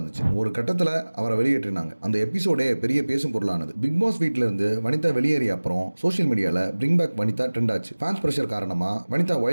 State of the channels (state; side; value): inverted; both; correlation -1.00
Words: ஒரு கட்டத்துல அவரை வெளியேற்றினாங்க. அந்த எபிசோடே பெரிய பேசும் பொருளானது. பிக் பாஸ் வீட்ல இருந்து வனிதா வெளியேறிய அப்புறம் சோஷியல் மீடியால பிரிங் பேக் வனிதா ட்ரெண்ட் ஆச்சு. ஃபேன்ஸ் பிரஷர் காரணமா வனிதா